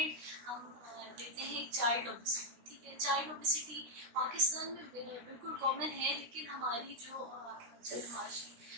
हम देते हैं एक चाइल्ड ओबेसिटी, ठीक है। चाइल्ड ओबेसिटी पाकिस्तान में बिल्कुल कॉमन है, लेकिन हमारी जो माशी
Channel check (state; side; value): late; left; 16 ms